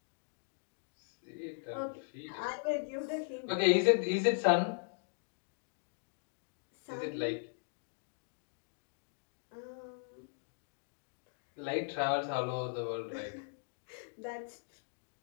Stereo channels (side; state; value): right; silent; digital silence